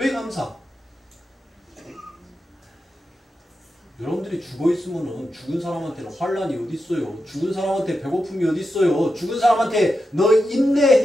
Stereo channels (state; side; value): normal; both; correlation 0.89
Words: 감사? 여러분들이 죽어있으면 죽은 사람한테는 환란이 어디 있어요? 죽은 사람한테 배고픔이 어디 있어요? 죽은 사람한테 너